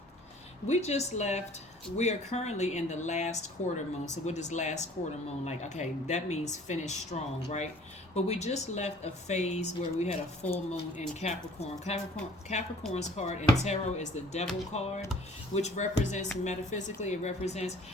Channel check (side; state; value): both; normal; correlation 0.52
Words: we just left. We are currently in the last quarter moon. So what does last quarter moon like? Okay, that means finish strong, right? But we just left a phase where we had a full moon in Capricorn. Capricorn's card in tarot is the Devil card, which represents metaphysically, it represents